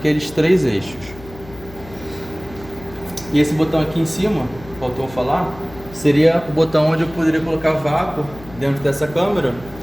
3 eixos. E esse botão aqui em cima, faltou falar, seria o botão onde eu poderia colocar vácuo dentro dessa câmera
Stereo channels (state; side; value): noise; left; hum, 18 dB below the sound